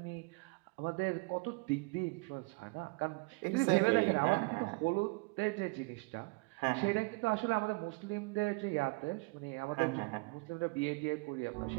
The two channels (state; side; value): quieter; left; 28.0 dB